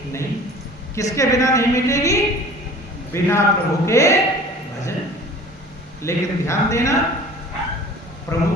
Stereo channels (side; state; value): both; normal; correlation 0.45